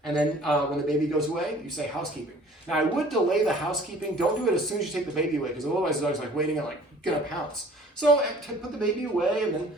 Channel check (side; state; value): both; normal; correlation 0.51